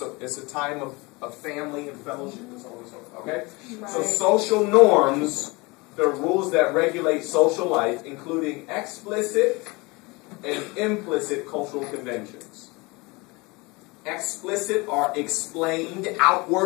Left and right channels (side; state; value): right; quieter; 25.5 dB